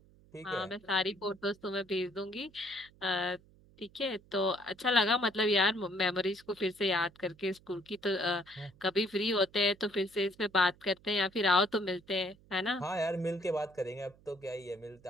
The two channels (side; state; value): right; noise; hum, 27 dB below the sound